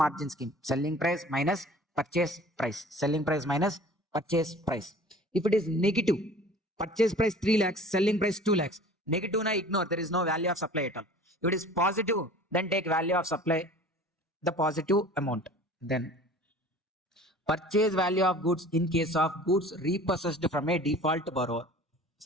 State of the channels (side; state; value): both; normal; correlation 0.45